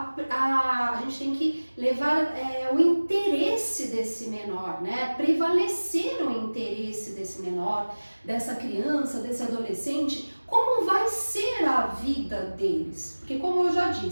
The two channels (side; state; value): both; inverted; correlation -1.00